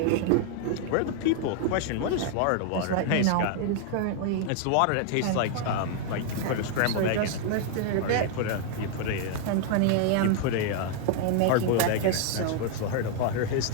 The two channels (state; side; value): different; both; correlation 0.00